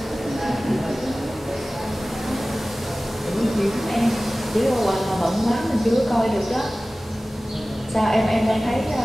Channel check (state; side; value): normal; both; correlation 0.97